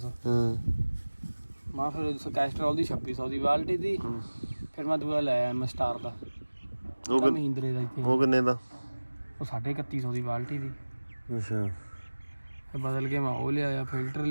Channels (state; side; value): inverted; both; correlation -1.00